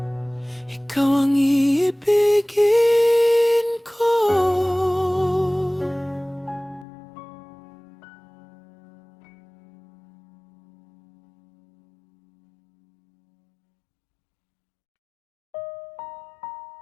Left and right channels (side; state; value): right; drops out; at 6.9 s